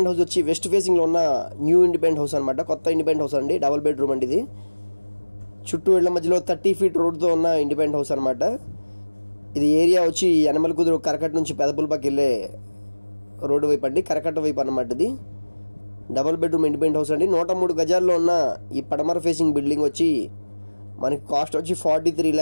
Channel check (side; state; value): both; inverted; correlation -1.00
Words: హౌస్ వచ్చి వెస్ట్ ఫేసింగ్లో ఉన్న న్యూ ఇండిపెండెంట్ హౌస్ అనమాట. కొత్త ఇండిపెండెంట్ హౌస్ అండి, డబుల్ బెడ్రూమ్ అండి. ఇది చుట్టూ ఇళ్ల మధ్యలో 30 feet రోడ్తో ఉన్న ఇండిపెండెంట్ హౌస్ అనమాట. ఇది ఏరియా వచ్చి యనమల కుదురు కరకట్ట నుంచి పెదపుల్పాకి వెళ్ళే రోడ్డు వైపు అండి, కరకట్ట వైపు అన్నమాట. ఇది డబుల్ బెడ్రూమ్ ఇండిపెండెంట్ హౌస్ అండి. 103 గజాల్లో ఉన్న ఈ పడమర ఫేసింగ్ బిల్డింగ్ వచ్చి మనకి కాస్ట్ వచ్చి 43